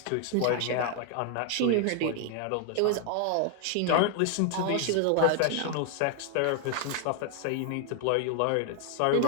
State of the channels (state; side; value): different; both; correlation 0.00